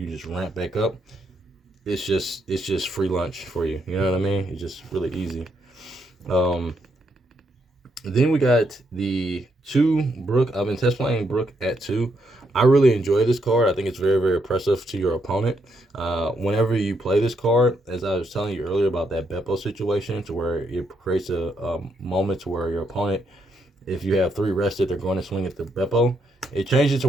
just ramp back up, it's just free lunch for you. You know what I mean? It's just really easy. Then we got the 2 Brook. I've been test playing Brook at 2. I really enjoy this card. I think it's very, very oppressive to your opponent. Whenever you play this card, as I was telling you earlier about that Beppo situation, to where it creates a moment to where your opponent, if you have 3 rested, they're going to swing at the Beppo. It changes to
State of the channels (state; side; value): normal; both; correlation 0.77